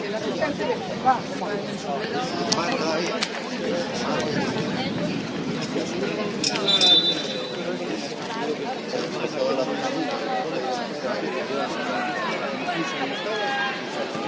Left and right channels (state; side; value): identical; both; correlation 1.00